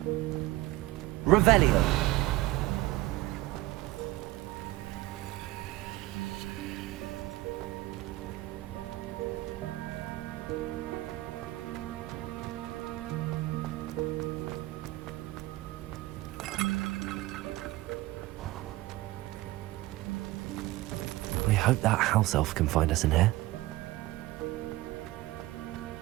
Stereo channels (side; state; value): left; quieter; 18.2 dB